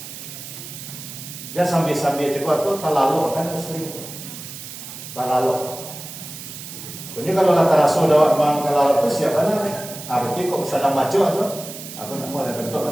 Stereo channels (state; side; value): noise; right; hiss, 12 dB below the sound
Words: Jangan sambil cakap tu terlalu kan sering terlalu. Punya kalau kata Rasul dah memang terlalu tu siapa nak? Berarti kok sedang baca tu, aku nak mau ada bentuk